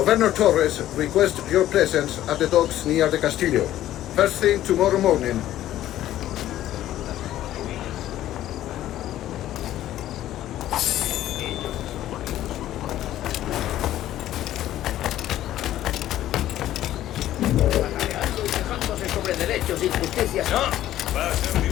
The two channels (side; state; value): right; quieter; 13.2 dB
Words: Torres requests your presence at the docks near the Castillo. First thing tomorrow morning.